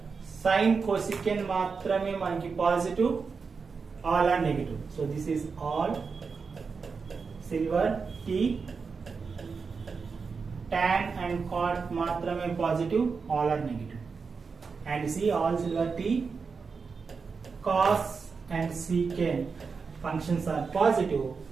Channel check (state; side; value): quieter; left; 5.1 dB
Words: sine cosecant matrame manaki positive, all are negative. So this is all silver T, tan and cot matrame positive, all are negative. And see, all silver T, cos and secant functions are positive